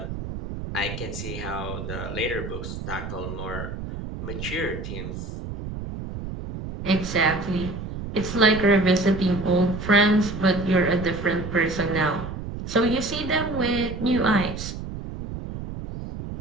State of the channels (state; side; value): noise; right; rumble, 8 dB below the sound